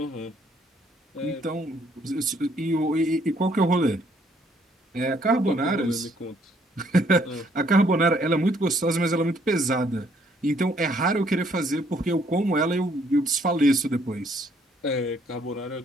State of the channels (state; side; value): normal; both; correlation 0.66